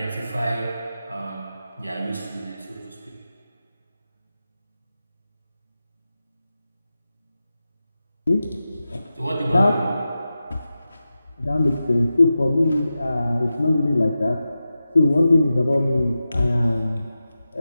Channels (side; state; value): both; inverted; correlation -0.93